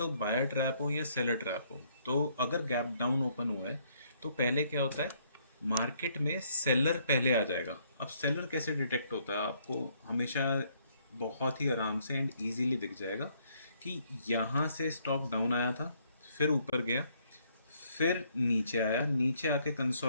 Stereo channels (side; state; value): both; inverted; correlation -0.68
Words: बायर ट्रैप हो या सेलर ट्रैप हो। तो अगर गैप डाउन ओपन हुआ है तो पहले क्या होता है, मार्केट में सेलर पहले आ जाएगा। अब सेलर कैसे डिटेक्ट होता है, आपको हमेशा बहुत ही आराम से एंड इजीली दिख जाएगा कि यहाँ से स्टॉक डाउन आया था, फिर ऊपर गया, फिर नीचे आया, नीचे आके